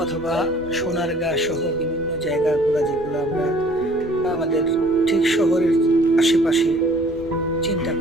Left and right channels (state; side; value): normal; both; correlation 0.54